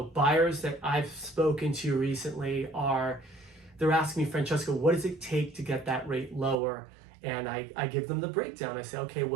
buyers that I've spoken to recently they're asking me, Francesco, what does it take to get that rate lower? And I give them the breakdown. I say, okay,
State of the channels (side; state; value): left; drops out; at 6.6 s